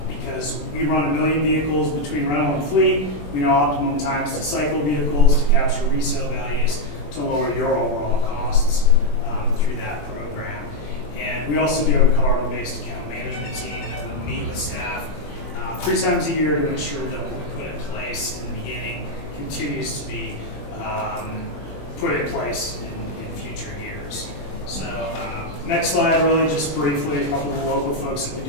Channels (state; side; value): late; right; 21 ms